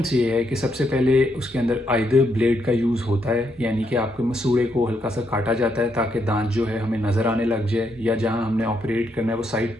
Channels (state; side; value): normal; both; correlation 0.78